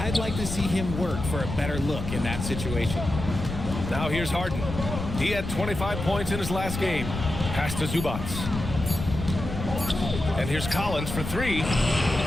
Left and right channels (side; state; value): left; noise; rumble, 6 dB below the sound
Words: like to see him work for a better look in that situation. Now here's Harden. He had 25 points in his last game. Pass to Zubats. And here's Collins for 3.